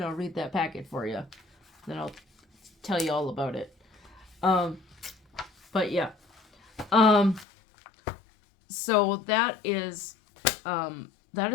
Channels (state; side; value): drops out; right; at 7.5 s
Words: I'll read that packet for you. Then I'll tell you all about it. But yeah. So that is